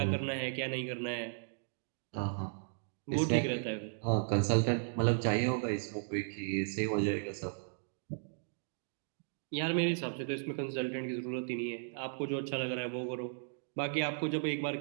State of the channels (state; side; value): silent; left; digital silence